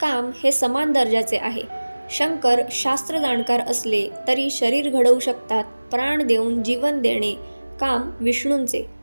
काम हे समान दर्जाचे आहे. शंकर शास्त्र जाणकार असले तरी शरीर घडवू शकतात, प्राण देऊन जीवन देणे काम विष्णूंचे.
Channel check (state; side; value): inverted; both; correlation -1.00